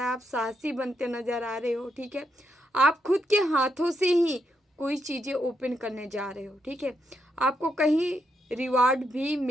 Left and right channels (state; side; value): normal; both; correlation 0.81